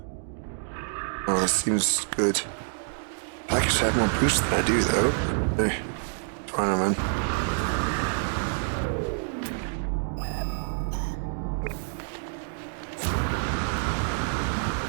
Oh, that seems good. I actually have more boost than I do, though. Hey, fine, man.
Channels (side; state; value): left; silent; digital silence